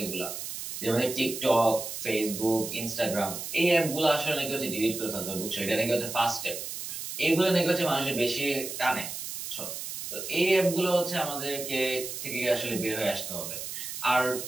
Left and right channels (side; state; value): right; noise; hiss, 7 dB below the sound